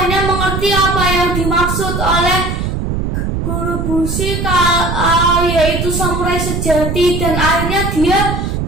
mengerti apa yang dimaksud oleh Guru Bushi, yaitu samurai sejati, dan akhirnya dia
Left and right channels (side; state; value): right; noise; rumble, 2 dB below the sound